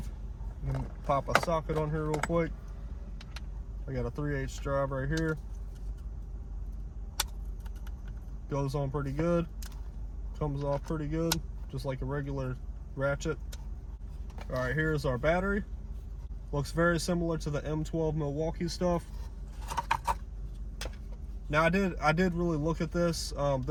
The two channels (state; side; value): identical; both; correlation 1.00